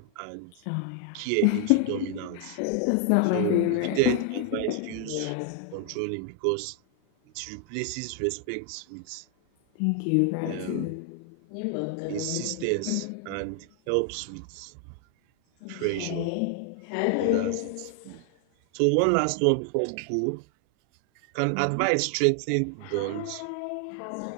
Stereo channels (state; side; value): different; both; correlation 0.00